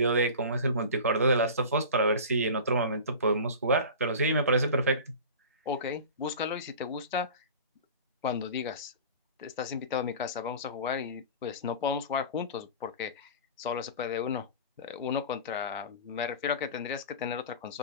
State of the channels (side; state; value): both; inverted; correlation -0.36